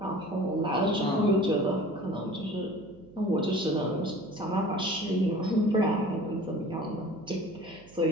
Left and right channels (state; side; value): noise; right; hum, 23 dB below the sound